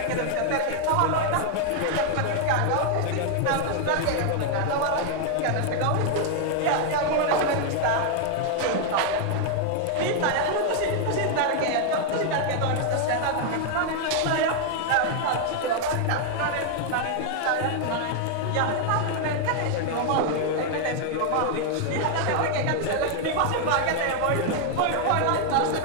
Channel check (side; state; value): both; different; correlation 0.00